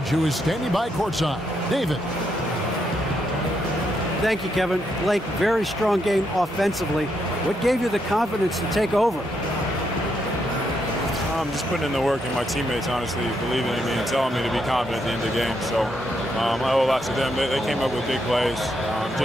who is standing by courtside. David. Thank you, Kevin. Blake, very strong game offensively. What gave you the confidence to take over? Just putting in the work, and my teammates, honestly, believing in me and telling me to be confident at the end of the game. So I owe a lot to them. They came up with big plays.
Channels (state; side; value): normal; both; correlation 0.78